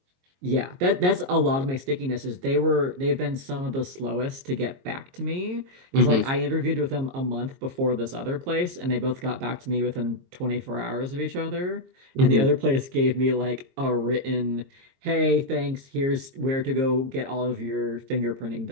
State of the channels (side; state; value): left; late; 22 ms